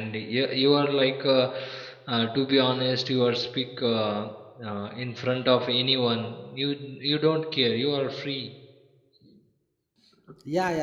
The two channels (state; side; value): identical; both; correlation 1.00